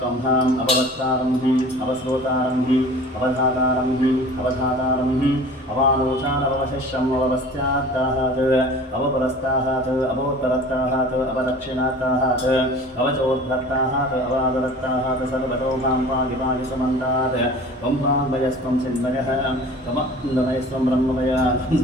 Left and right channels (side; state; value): both; normal; correlation 0.43